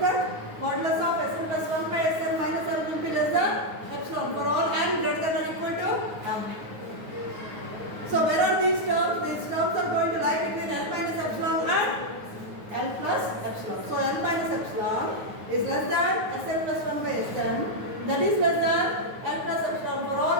that modulus of Sn plus 1 by Sn minus L will be less than epsilon for all n greater than or equal to M. So where are these terms? These terms are going to lie between L minus epsilon and L plus epsilon. So L minus epsilon is less than Sn plus 1 by Sn, that is less than L plus epsilon for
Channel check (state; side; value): late; left; 9.4 ms